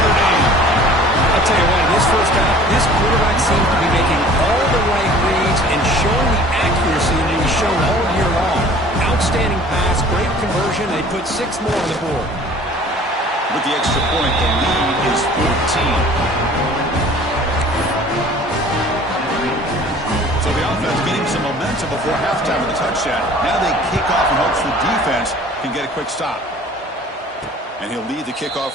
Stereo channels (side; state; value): both; normal; correlation 0.49